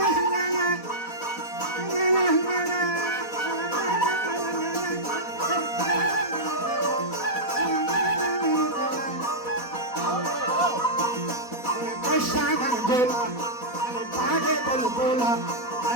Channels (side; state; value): right; late; 4.1 ms